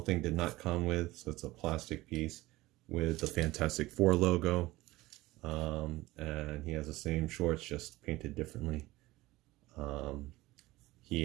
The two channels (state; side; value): quieter; left; 18.8 dB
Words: did not come with. So it's a plastic piece with the Fantastic Four logo. And he has the same shorts, just painted differently. He